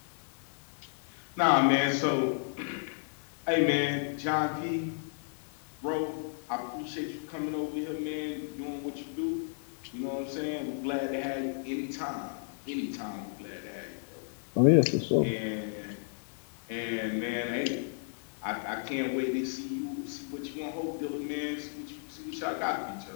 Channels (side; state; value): right; silent; digital silence